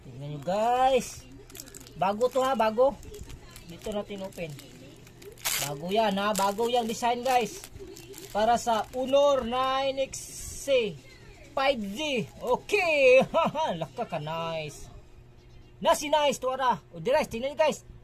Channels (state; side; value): identical; both; correlation 1.00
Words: Tingnan nyo guys. Bago to ha, bago. Dito natin open. Bago yan ha, bago yung design guys. Para sa Honor 9XC 5G. Okay. Laka ka nice. Nice to ara. Dirais, tingnan nyo guys.